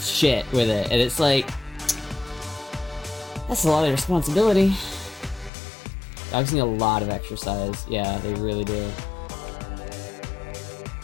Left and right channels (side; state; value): right; drops out; at 5.5 s